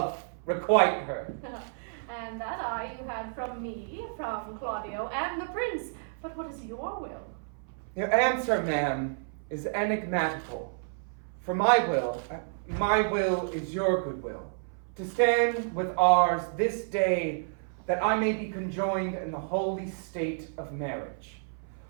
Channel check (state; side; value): silent; left; 58 dB below the other